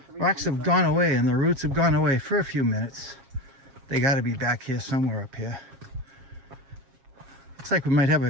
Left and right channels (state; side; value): late; left; 7.4 ms